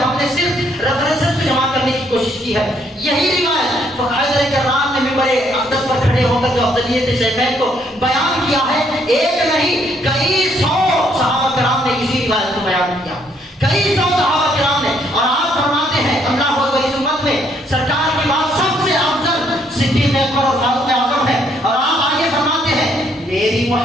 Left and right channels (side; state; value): both; normal; correlation 0.69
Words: نے صرف ریفرنسز کو جمع کرنے کی کوشش کی ہے. یہی روایت حیدر کرار نے منبر اقدس پر کھڑے ہو کر جو افضلیت شیخین کو بیان کیا ہے, ایک نہیں کئی 100 صحابہ کرام نے اسی روایت کو بیان کیا, کئی 100 صحابہ کرام نے. اور آپ فرماتے ہیں اللہ اکبر, اس امت میں سرکار کی بات سب سے افضل صدیق اکبر اور فاروق اعظم ہے. اور آپ آگے فرماتے ہیں میری